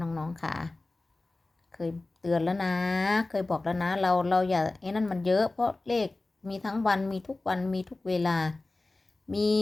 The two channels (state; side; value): quieter; right; 3.1 dB